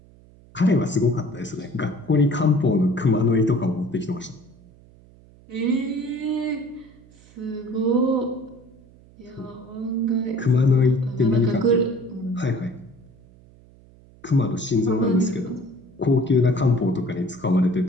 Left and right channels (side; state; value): right; noise; hum, 26 dB below the sound